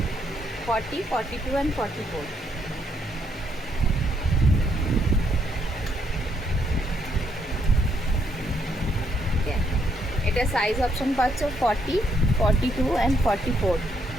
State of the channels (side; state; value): both; normal; correlation 0.74